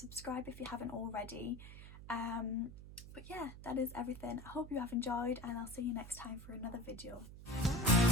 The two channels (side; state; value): right; noise; hum, 13 dB below the sound